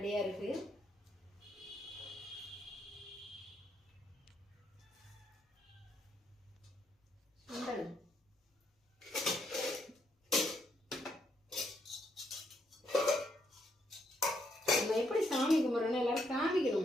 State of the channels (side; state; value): both; normal; correlation 0.75